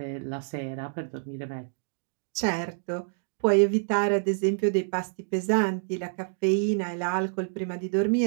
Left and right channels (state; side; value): silent; left; digital silence